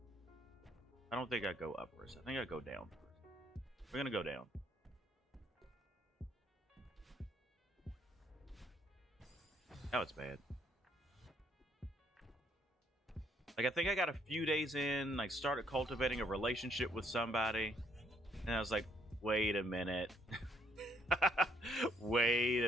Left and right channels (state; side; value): normal; both; correlation 0.69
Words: I don't think I go up first. I think I go down first. We're gonna go down. Now it's bad. Like, I think I got a few days in, like, started cultivating a relationship with somebody, and I was like, wait a minute. Wait